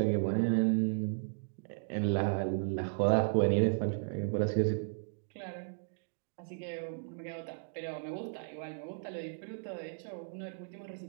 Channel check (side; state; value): left; silent; digital silence